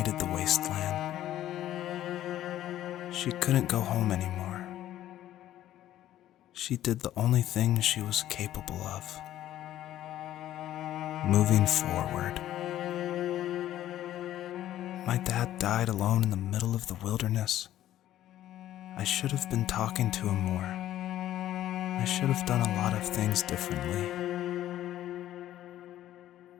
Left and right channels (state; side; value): quieter; right; 13.0 dB